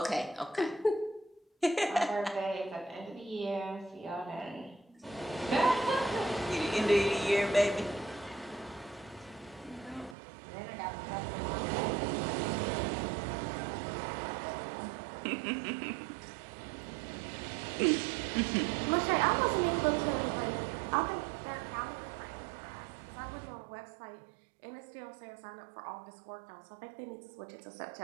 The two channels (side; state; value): left; drops out; at 10.2 s